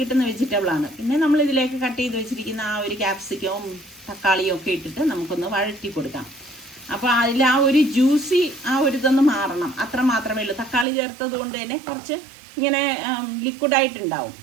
വെജിറ്റബിളാണ്. പിന്നെ നമ്മൾ ഇതിലേക്ക് കട്ട് ചെയ്ത് വെച്ചിരിക്കുന്ന ആ ഒരു ക്യാപ്സിക്കവും തക്കാളിയും ഒക്കെ ഇട്ടിട്ട് നമുക്കൊന്ന് വഴറ്റി കൊടുക്കാം. അപ്പോൾ അതിൽ ആ ഒരു ജ്യൂസി ആ ഒരു ഇതൊന്ന് മാറണം, അത്ര മാത്രമേ ഉള്ളൂ. തക്കാളി ചേർത്തത് കൊണ്ട് തന്നെ കുറച്ച് ഇങ്ങനെ ലിക്വിഡായിട്ടുണ്ടാവും,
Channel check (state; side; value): drops out; left; at 10.9 s